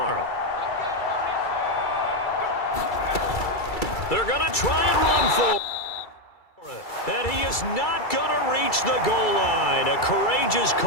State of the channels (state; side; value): late; right; 2.3 ms